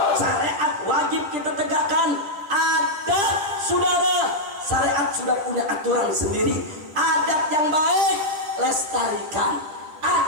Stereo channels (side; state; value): left; late; 9.9 ms